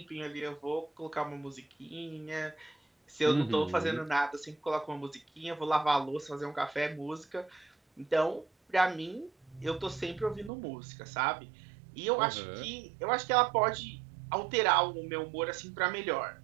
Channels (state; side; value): drops out; left; at 10.5 s